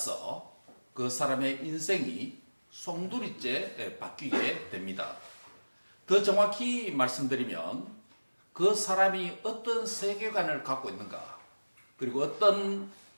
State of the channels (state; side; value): inverted; both; correlation -1.00